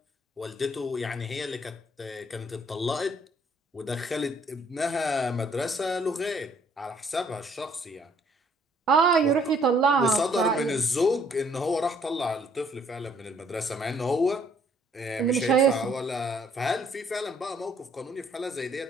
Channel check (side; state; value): both; normal; correlation 0.63